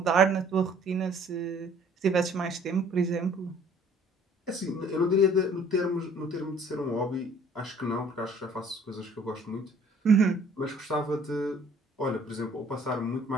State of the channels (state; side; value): normal; both; correlation 0.56